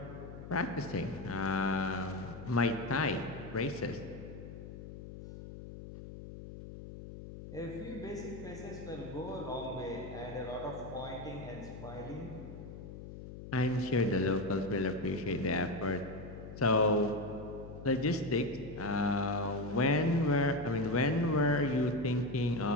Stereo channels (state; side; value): noise; left; hum, 12 dB below the sound